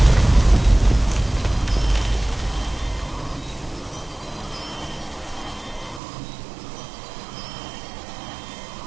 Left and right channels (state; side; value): drops out; left; at 6.0 s